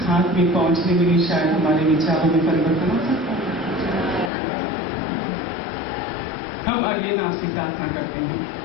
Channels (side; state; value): right; drops out; at 4.3 s